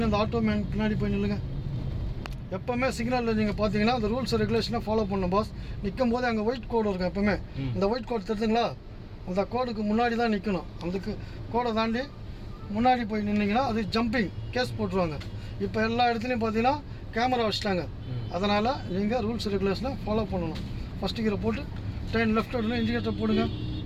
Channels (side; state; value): both; identical; correlation 1.00